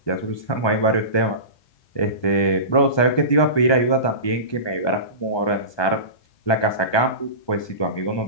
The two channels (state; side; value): late; right; 1.2 ms